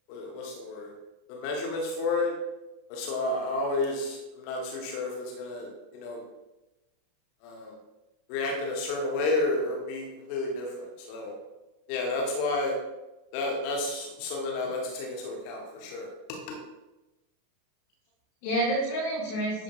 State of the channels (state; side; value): late; right; 33 ms